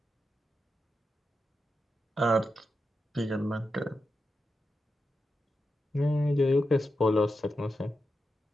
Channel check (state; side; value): normal; both; correlation 0.88